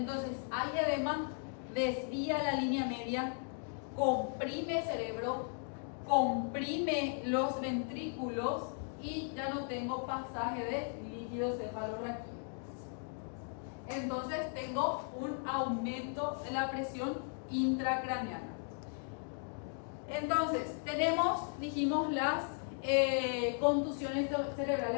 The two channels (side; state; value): right; silent; 53 dB below the other